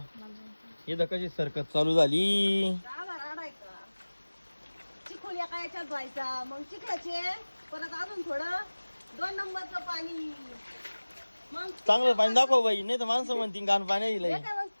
हे कशी सरकत चालू झाली. चिखल एका याच्यात व्हायचा, मग चिखलाचे परत अजून थोडं 2 नंबरचं पाणी, मग चांगलं पाणी दाखव बाई, नाही तर माणसं म्हणतील घाण पाणी हे दिलंय. काय मग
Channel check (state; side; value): inverted; both; correlation -1.00